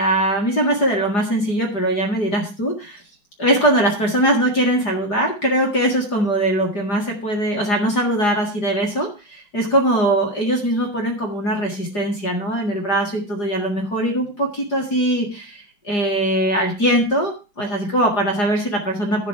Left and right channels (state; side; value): late; right; 4.9 ms